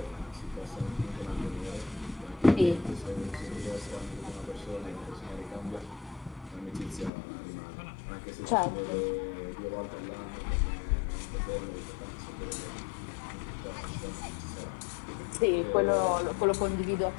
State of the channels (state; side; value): drops out; right; at 7.1 s